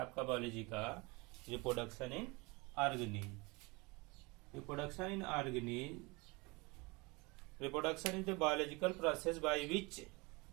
बायोलॉजी का, reproduction in organism. Reproduction is the biological process by which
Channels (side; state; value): left; quieter; 26.1 dB